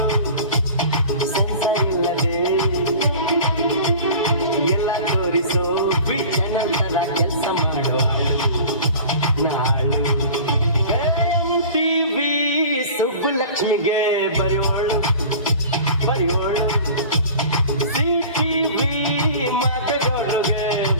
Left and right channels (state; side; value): inverted; both; correlation -0.40